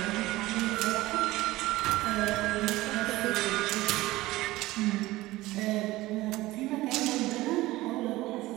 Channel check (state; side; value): quieter; left; 18.2 dB